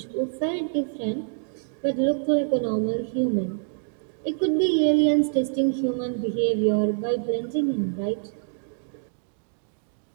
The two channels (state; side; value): silent; left; digital silence